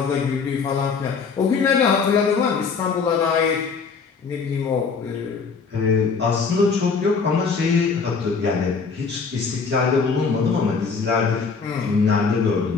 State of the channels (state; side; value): quieter; right; 5.2 dB